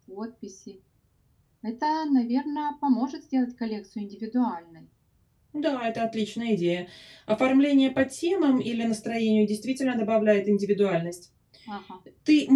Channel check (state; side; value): identical; both; correlation 1.00